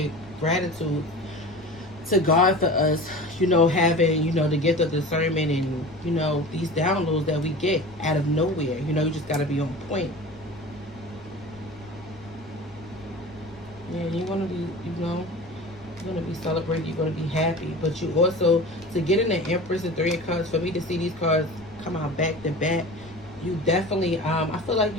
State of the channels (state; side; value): noise; left; rumble, 23 dB below the sound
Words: gratitude to God for us, you know, having, you know, the gift of discernment and, you know, these downloads that we get out of nowhere. You know, you just got to be on point. Yeah, you're going to be, you know, you're going to be celebrated. You're going to be happy. But you also, to get in the Empress and 3 of Cups, for me to see these cards come out back to back, you definitely, I feel like